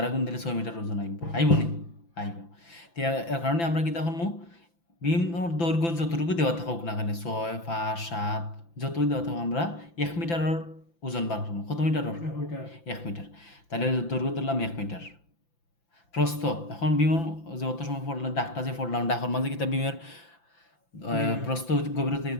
গুণ দিলে 6 মিটার ওজন আইব নি? আইব। তো এর কারণে আমরা কি তখন বিম দৈর্ঘ্য যতটুকু দেওয়া থাকুক না কেন, 6, 5, 7 যতই দেওয়া থাকুক, আমরা 1 মিটারের ওজন বার করবো। কত মিটারের? 1 মিটার। তাহলে দৈর্ঘ্য ধরলাম 1 মিটার। প্রস্থ, এখন বিমের যে অত সময় পড়লাম ডাকটা যে পড়লাম, ডাকর মাঝে কি তা বিমের প্রস্থ গভীরতা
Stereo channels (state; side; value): late; right; 5.9 ms